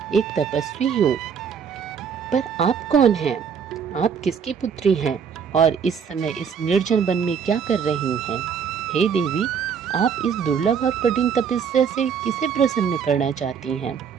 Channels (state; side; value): quieter; left; 6.9 dB